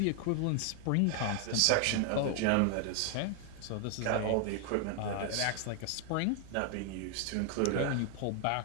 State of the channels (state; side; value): different; both; correlation 0.00